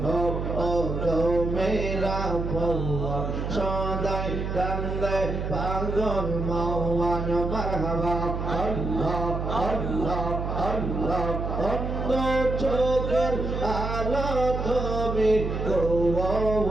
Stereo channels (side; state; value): right; noise; hum, 3 dB below the sound